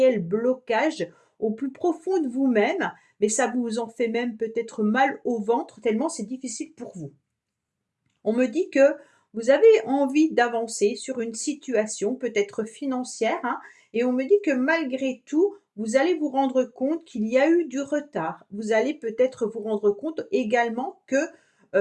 blocage au plus profond de vous-même, mais ça vous en fait même peut-être mal au ventre tellement c'est difficile pour vous. On me dit que Vous avez envie d'avancer sur une situation peut-être financière, hein, et on me dit que malgré tout, vous allez vous rendre compte qu'il y a eu du retard. Vous allez peut-être vous rendre compte également que,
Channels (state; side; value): identical; both; correlation 1.00